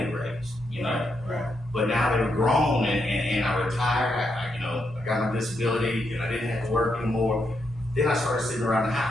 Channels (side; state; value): both; normal; correlation 0.81